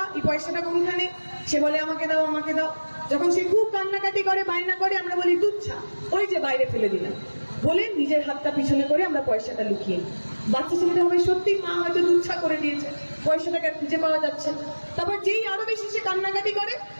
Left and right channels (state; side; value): inverted; both; correlation -1.00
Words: এই পয়সাটা কোনখানে? সে বলে আমাকে দাও, আমাকে দাও। যখন সে খুব কান্নাকাটি করে, বায়না করে, আমরা বলি তুচ্ছা, ওই যে বাইরে ফেলে দিলাম, বলে নিজের হাতটা পিছনে করে আমরা পয়সাটা লুকিয়ে। বাচ্চা ছেলেটা হবে সত্যি মা হয়তো তুচ্ছা করে দিয়েছে, পয়সাটাকে খুঁজে পাওয়া যাচ্ছে। তারপর যেই আরো বেশি সে কান্নাকাটি করে,